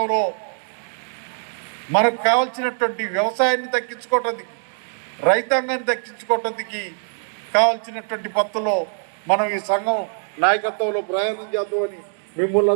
మనకు కావాల్సినటువంటి వ్యవసాయాన్ని దక్కించుకోవటానికి, రైతాంగాన్ని దక్కించుకోవటానికి కావాల్సినటువంటి పద్ధతిలో మనం ఈ సంఘం నాయకత్వంలో ప్రయాణం చేద్దామని మిమ్మల్ని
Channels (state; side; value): silent; left; digital silence